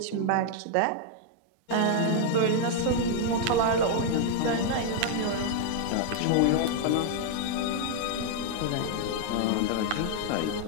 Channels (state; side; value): different; both; correlation -0.01